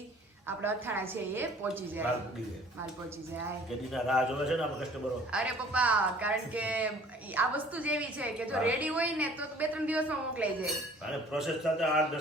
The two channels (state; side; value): normal; both; correlation 0.52